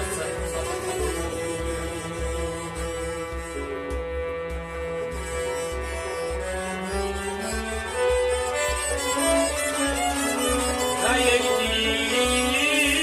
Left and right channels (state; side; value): identical; both; correlation 1.00